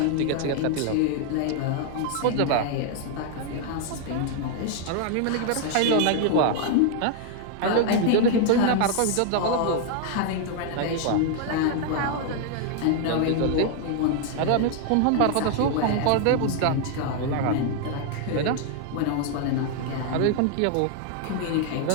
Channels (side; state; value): both; different; correlation 0.00